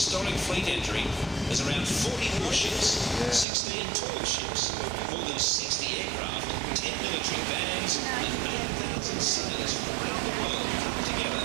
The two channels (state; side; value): drops out; left; at 3.5 s